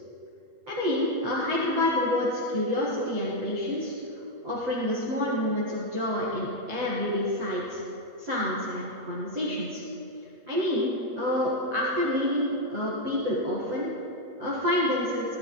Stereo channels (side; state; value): left; late; 8.4 ms